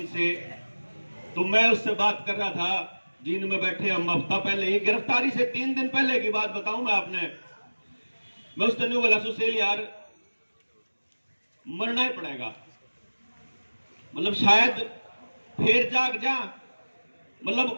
तो मैं उससे बात कर रहा था जींद में बैठे हम हफ्ता पहले ही, गिरफ्तारी से 3 दिन पहले की बात बताऊं मैं आपने। मैं उसने नहीं बोला सुशील यार मरना ही पड़ेगा, मतलब शायद फिर जाग जा, मतलब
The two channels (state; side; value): inverted; both; correlation -1.00